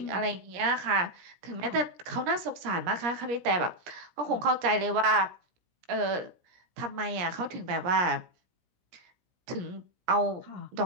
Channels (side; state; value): left; late; 17 ms